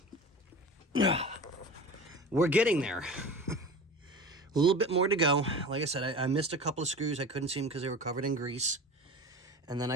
we're getting there. A little bit more to go. Like I said, I missed a couple of screws. I couldn't see them because they were covered in grease. And then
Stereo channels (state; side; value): normal; both; correlation 0.34